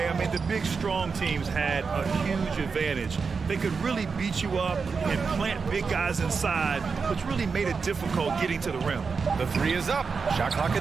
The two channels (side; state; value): left; quieter; 5.2 dB